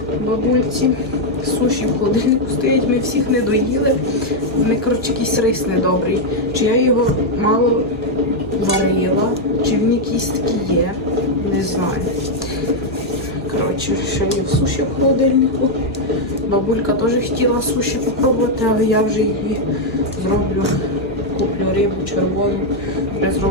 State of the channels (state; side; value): normal; both; correlation 0.00